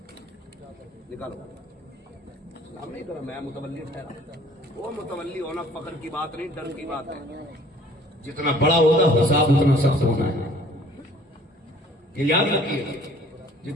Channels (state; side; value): normal; both; correlation 0.55